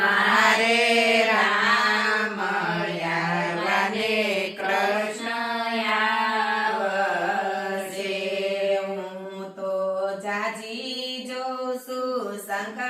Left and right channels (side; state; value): both; identical; correlation 1.00